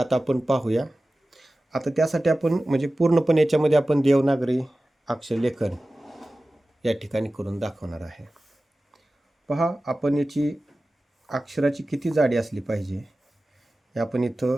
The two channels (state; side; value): normal; both; correlation 0.96